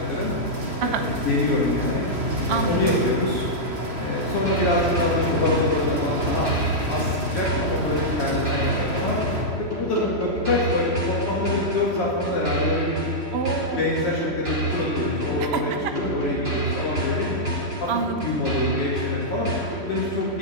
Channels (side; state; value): left; late; 3.0 ms